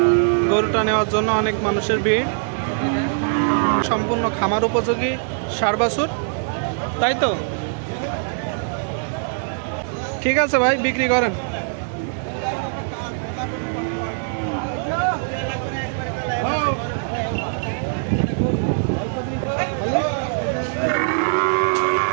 গরুটা নেওয়ার জন্য অনেক মানুষের ভিড়। সম্পূর্ণ খামার উপযোগী ষাঁড় বাছুর, তাই তো? ঠিক আছে ভাই, বিক্রি করেন।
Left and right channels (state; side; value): silent; left; 64 dB below the other